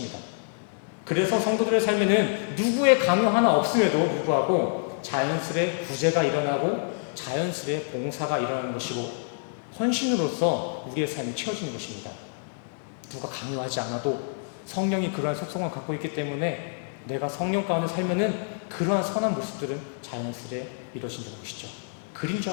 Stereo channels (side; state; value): right; silent; 60 dB below the other